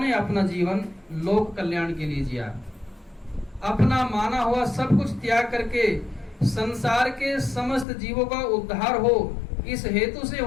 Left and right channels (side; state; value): right; drops out; at 7.9 s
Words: अपना जीवन लोक कल्याण के लिए जिया। अपना माना हुआ सब कुछ त्याग करके संसार के समस्त जीवों का उद्धार हो, इस हेतु से